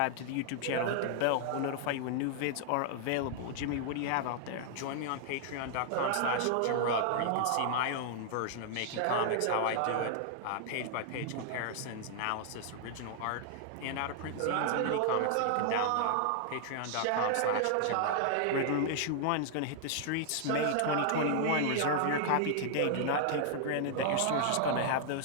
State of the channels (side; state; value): both; different; correlation -0.01